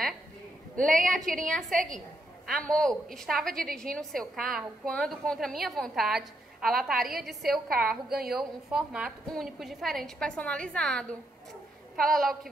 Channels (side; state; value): both; normal; correlation 0.78